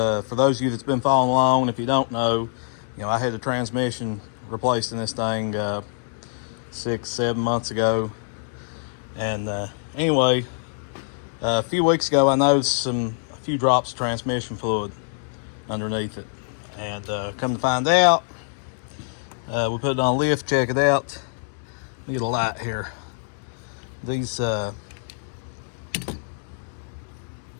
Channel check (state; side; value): silent; right; digital silence